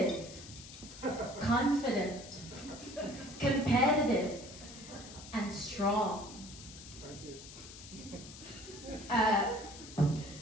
confident, competitive, and strong.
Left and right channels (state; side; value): noise; left; hiss, 15 dB below the sound